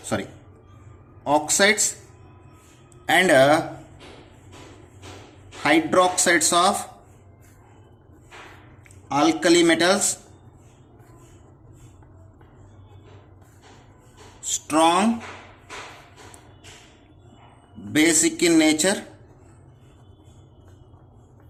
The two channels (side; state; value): both; identical; correlation 1.00